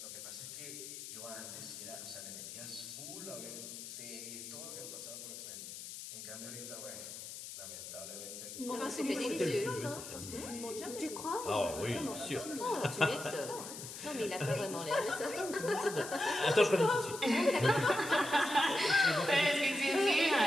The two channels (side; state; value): left; noise; hiss, 10 dB below the sound